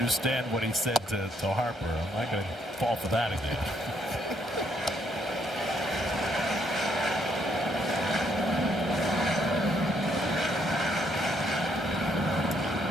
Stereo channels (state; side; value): normal; both; correlation 0.72